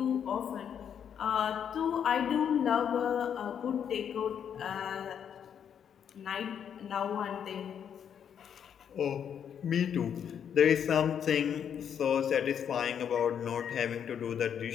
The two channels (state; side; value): quieter; right; 8.3 dB